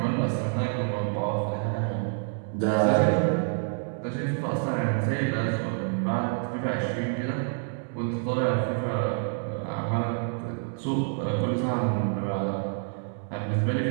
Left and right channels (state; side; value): silent; left; 60 dB below the other